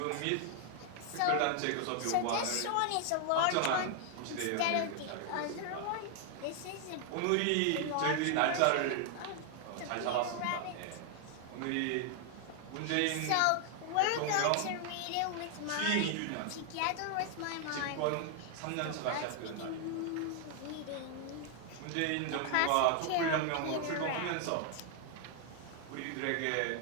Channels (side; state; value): both; different; correlation 0.00